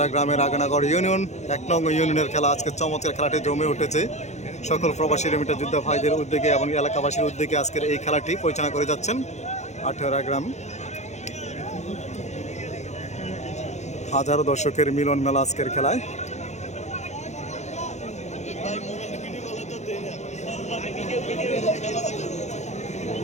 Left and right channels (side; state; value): right; late; 0.33 ms